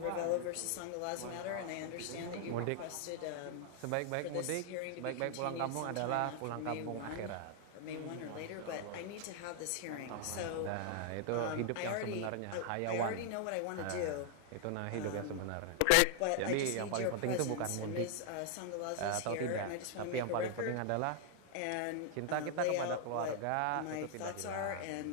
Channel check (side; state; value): both; different; correlation 0.00